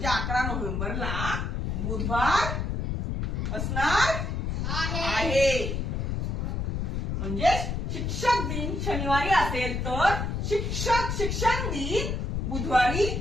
11 नोव्हेंबरला बुधवार असणार आहे. म्हणजे शिक्षक दिन शनिवारी असेल तर शिक्षण दिन बुधवारी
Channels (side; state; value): left; noise; rumble, 1 dB below the sound